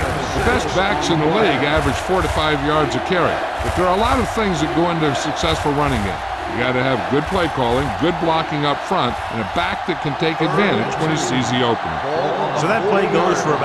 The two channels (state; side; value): identical; both; correlation 1.00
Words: The best backs in the league average 4 to 5 yards a carry. But there are a lot of things that go into a successful running game. You got to have good play calling, good blocking up front, and a back that can take advantage when he sees the opening. So that play goes for